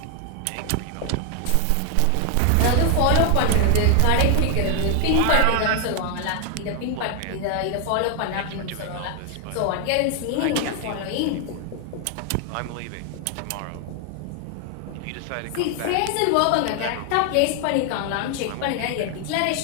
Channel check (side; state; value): both; different; correlation 0.00